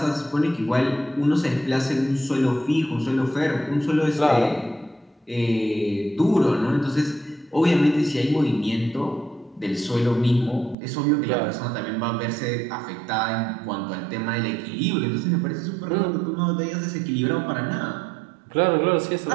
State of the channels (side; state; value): left; drops out; at 10.8 s